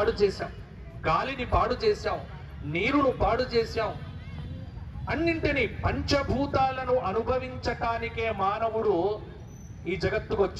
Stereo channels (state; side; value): identical; both; correlation 1.00